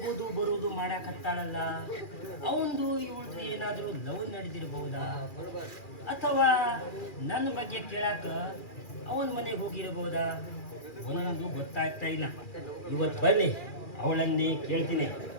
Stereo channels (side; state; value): right; late; 2.4 ms